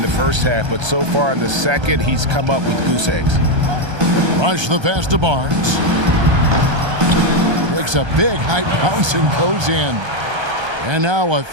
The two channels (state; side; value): late; left; 1.3 ms